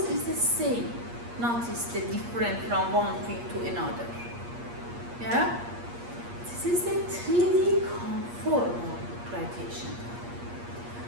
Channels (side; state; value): left; late; 8.5 ms